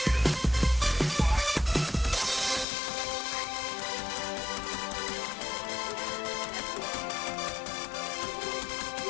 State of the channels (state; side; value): drops out; right; at 2.7 s